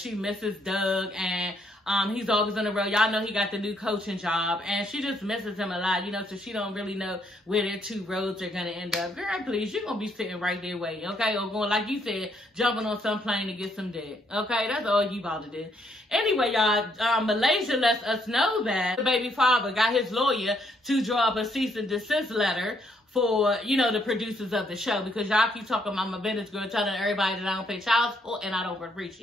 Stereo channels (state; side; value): normal; both; correlation 0.71